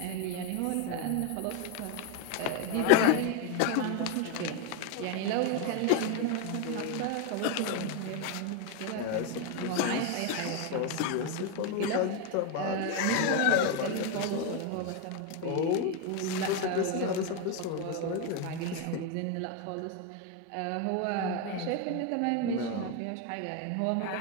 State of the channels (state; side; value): different; both; correlation 0.02